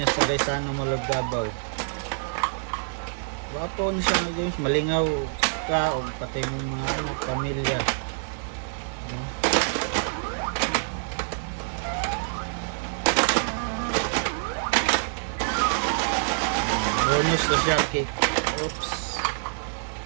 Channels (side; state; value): left; silent; digital silence